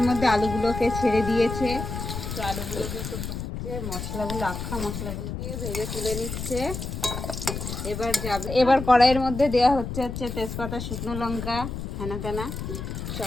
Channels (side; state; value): left; noise; rumble, 6 dB below the sound